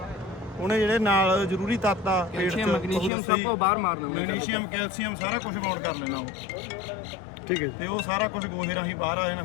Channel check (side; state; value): right; drops out; at 3.1 s